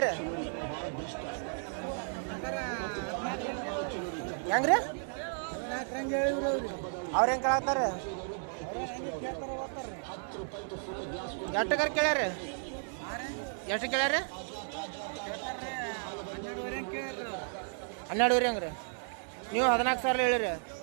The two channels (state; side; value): silent; left; 55 dB below the other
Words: ಹೆಂಗ್ರಿ ಅವ್ರು ಹೆಂಗೆ ಕೇಳತ್ತಾರ? ಎಷ್ಟಕ್ಕಾರ ಕೇಳ್ಯಾರ? ಎಷ್ಟು ಕೇಳ್ಯಾರ? 12,500 ಹೆಂಗ್ರಿ? ನೀವು 14,000 ಹೇಳಿರಿ.